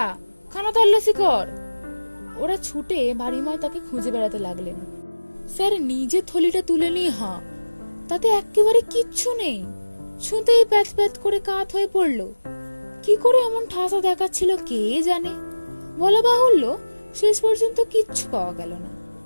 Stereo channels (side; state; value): both; inverted; correlation -1.00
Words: খানা তল্লাশি কর। ওরা ছুটে বাড়িময় তাকে খুঁজে বেড়াতে লাগলেন। স্যার নিজে থলিটা তুলে নিয়ে হাঁ, তাতে একেবারে কিচ্ছু নেই। ছুঁতেই প্যাথ প্যাথ করে কাত হয়ে পড়ল। কি করে এমন ঠাসা দেখাচ্ছিল কে জানে। বলা বাহুল্য, শেষ পর্যন্ত কিচ্ছু পাওয়া গেল না,